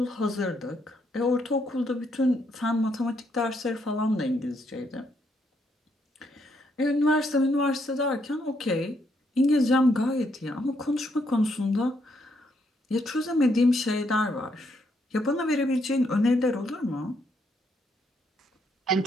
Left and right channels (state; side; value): normal; both; correlation 0.75